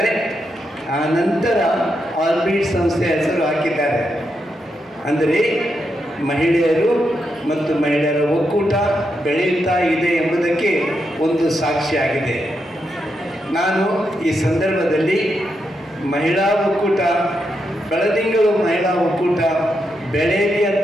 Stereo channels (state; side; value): normal; both; correlation 0.83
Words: ಆ ನಂತರ ಆರ್ಬಿಟ್ ಸಂಸ್ಥೆ ಹೆಸರು ಹಾಕಿದ್ದಾರೆ. ಅಂದರೆ ಮಹಿಳೆಯರು ಮತ್ತು ಮಹಿಳೆಯರ ಒಕ್ಕೂಟ ಬೆಳೆಯುತ್ತಾ ಇದೆ ಎಂಬುದಕ್ಕೆ ಒಂದು ಸಾಕ್ಷಿಯಾಗಿದೆ. ನಾನು ಈ ಸಂದರ್ಭದಲ್ಲಿ ಮಹಿಳಾ ಒಕ್ಕೂಟ, ಬೆಳದಿಂಗಳು ಮಹಿಳಾ ಒಕ್ಕೂಟ ಬೆಳೆಯಲಿ